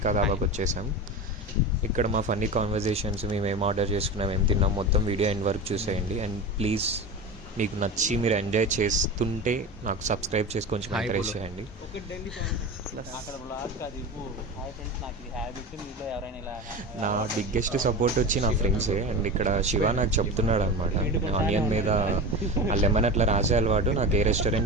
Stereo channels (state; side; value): normal; both; correlation 0.27